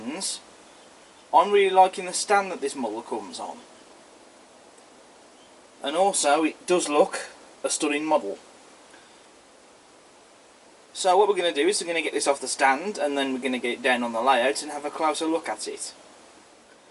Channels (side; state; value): both; identical; correlation 1.00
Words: I'm really liking the stand that this model comes on. And also it does look a stunning model. So what we're going to do is we're going to get this off the stand and then we're going to get it down on the layout and have a closer look at it.